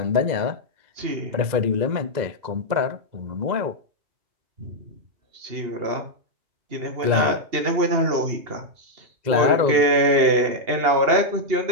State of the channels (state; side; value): late; left; 2.1 ms